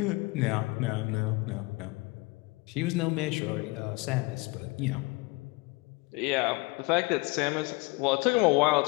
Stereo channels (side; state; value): right; quieter; 25.3 dB